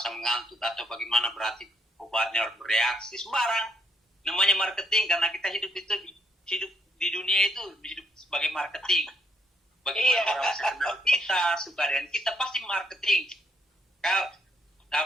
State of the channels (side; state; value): both; normal; correlation 0.73